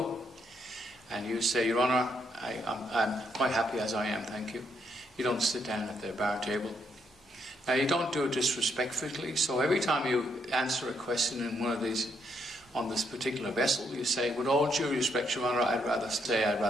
And you say, Your Honour, I'm quite happy as I am, thank you. You don't sit down at their bar table. Now, you don't do it disrespectfully, so every time you answer a question in one of these, on this particular vessel, you say, with all due respect, Your Honour, I'd rather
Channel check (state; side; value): normal; both; correlation 0.75